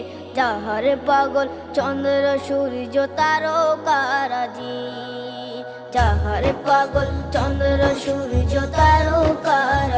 যাহার পাগল চন্দ্র সূর্য তারকারাজি, যাহার পাগল চন্দ্র সূর্য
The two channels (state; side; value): identical; both; correlation 1.00